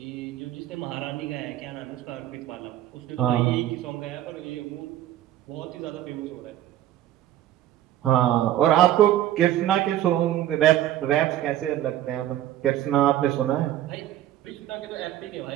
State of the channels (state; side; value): quieter; left; 12.9 dB